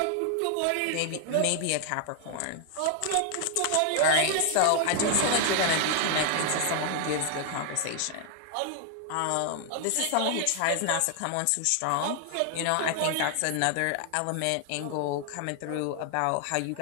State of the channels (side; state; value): both; different; correlation 0.00